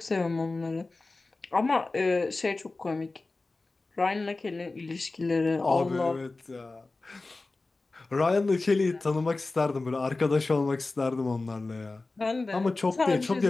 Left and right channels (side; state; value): right; quieter; 3.4 dB